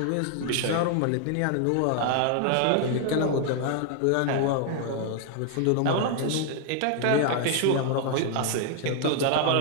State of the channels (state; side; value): different; both; correlation 0.00